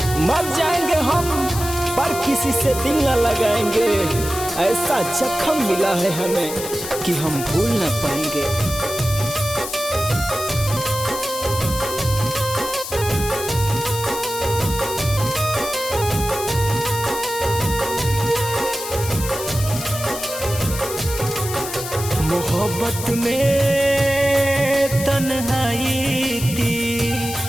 मर जाएंगे हम पर किसी से दिल न लगाएंगे। ऐसा जख्म मिला है हमें कि हम भूल न पाएंगे। मोहब्बत में तन्हाई थी,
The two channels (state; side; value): noise; left; hiss, 8 dB below the sound